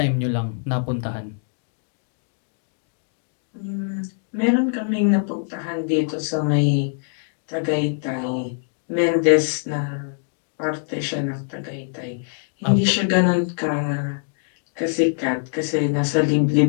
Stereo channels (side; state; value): right; silent; digital silence